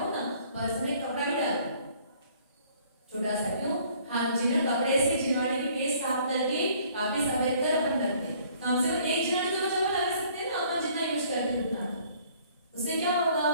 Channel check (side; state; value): both; inverted; correlation -0.58